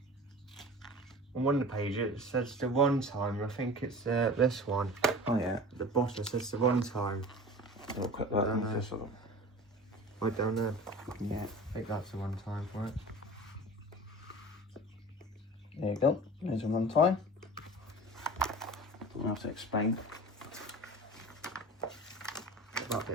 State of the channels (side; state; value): both; normal; correlation 0.38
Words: On one of the pages it says the one time. I think it's this one. Oh yeah. The bottom says the one time. I'll cut that in this sort of. Right down there. Yeah. I think that's the one time for it. There you go. There's a one time. Don't have to explain. Get that